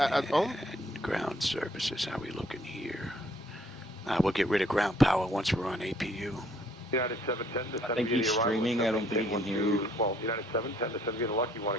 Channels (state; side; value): normal; both; correlation 0.64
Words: home? And ground services, how we looking here? We'll get rid of ground power once we're on APU. United 710 to I think he's streaming. I don't think he can hear you. Well, United 710 to send you the lucky